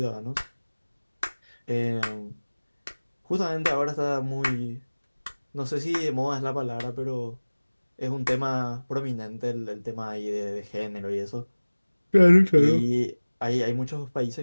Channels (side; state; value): both; inverted; correlation -1.00